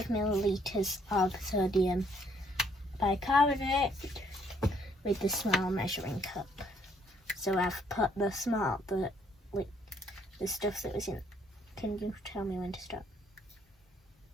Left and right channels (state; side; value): normal; both; correlation 0.66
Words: milliliters of sodium bicarbonate with the small measuring cup. So I've put the stuff that was in. Can you tell me when to stop?